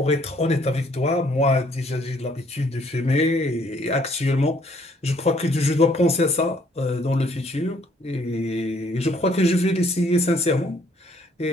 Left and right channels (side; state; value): both; normal; correlation 0.64